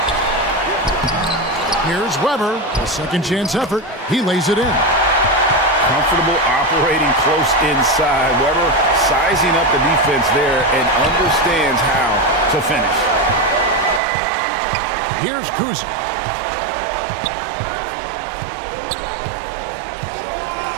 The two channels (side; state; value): left; drops out; at 14.0 s